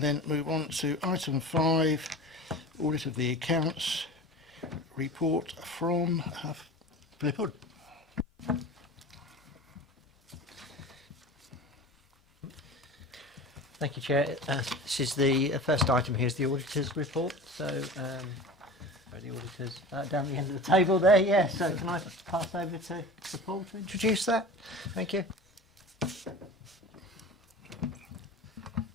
then move on to item 5, audit of the accounts, report from Philip Hood. Thank you, Chair. This is the first item here is the auditor's report. So, where are the auditors? Down the end of the table there, yeah. So can I pass over to Paul to introduce that? Thank you.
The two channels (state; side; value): normal; both; correlation 0.35